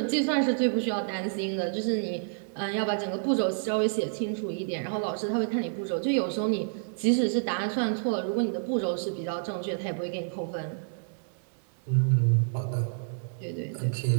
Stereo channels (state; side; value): silent; left; digital silence